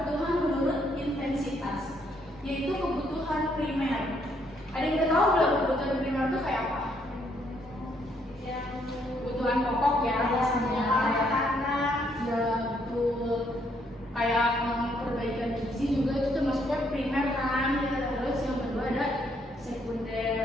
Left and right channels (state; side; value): normal; both; correlation 0.71